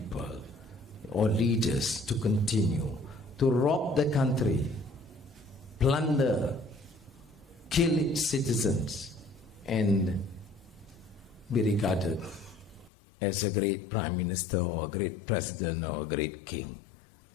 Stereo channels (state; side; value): drops out; right; at 12.9 s